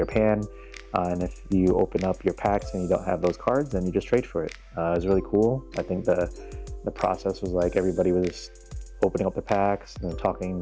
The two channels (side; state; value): both; identical; correlation 1.00